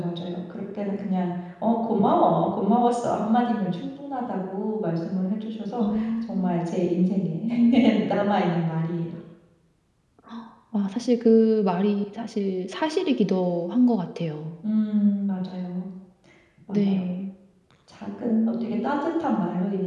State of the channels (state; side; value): identical; both; correlation 1.00